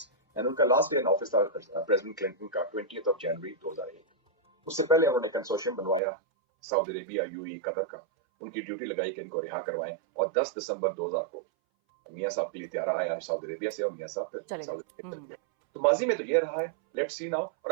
And ان کا لاسٹ ڈے ان آفس تھا پریزیڈنٹ کلنٹن کا 20 جنوری 2001۔ اس سے پہلے انہوں نے کنسورشیم بنوایا سعودی عربیہ، یو اے، قطر کا، ان کی ڈیوٹی لگائی کہ ان کو رہا کروائیں، اور 10 دسمبر 2000 کو میاں صاحب کے لیے تیارہ آیا سعودی عربیہ سے، اور میاں صاحب پھر سعودی عربیہ چلے گئے۔ تو ماضی میں تو یہ رہا ہے، لیٹ سی ناؤ۔ اور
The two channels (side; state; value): left; drops out; at 6.0 s